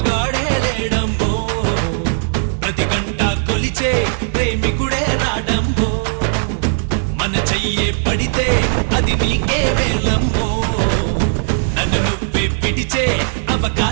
మగాడే లేడమ్మో ప్రతి గంట కొలిచే ప్రేమికుడే రాడమ్మో మన చెయ్యే పడితే అది నీకే వేలమ్మో నన్ను నువ్వే పిడిచే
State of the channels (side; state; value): left; silent; 62 dB below the other